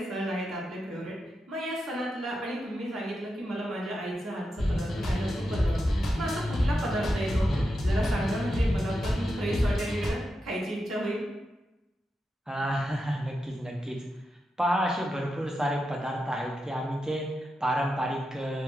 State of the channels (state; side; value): normal; both; correlation 0.88